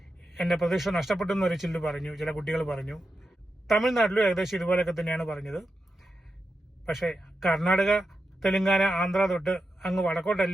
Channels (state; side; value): normal; both; correlation 0.89